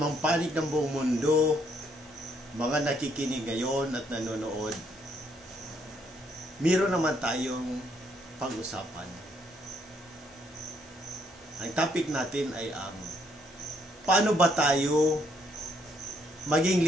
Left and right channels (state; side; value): normal; both; correlation 0.71